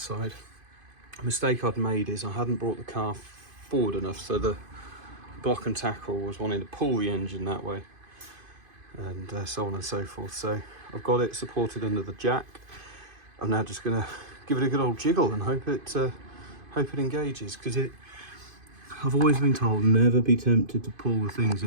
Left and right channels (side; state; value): left; late; 2.5 ms